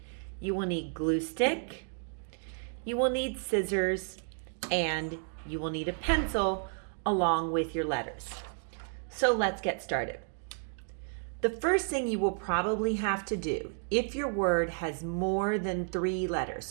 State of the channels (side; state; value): left; silent; 56 dB below the other